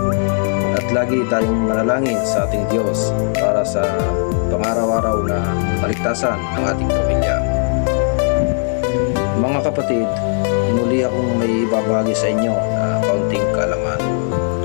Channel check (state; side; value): silent; right; 64 dB below the other